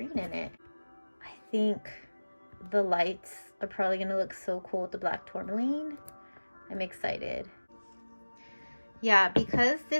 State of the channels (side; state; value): both; inverted; correlation -1.00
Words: in it. I think the lights are probably gonna look so cool with the black tourmaline. I'm excited. Yeah, because